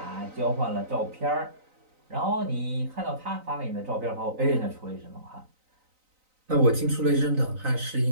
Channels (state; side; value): late; left; 3.9 ms